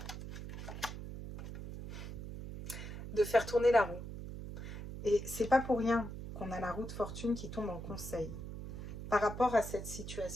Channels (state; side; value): noise; right; hum, 8 dB below the sound